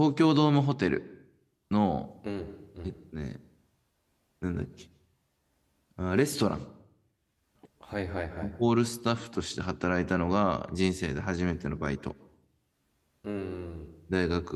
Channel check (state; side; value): identical; both; correlation 1.00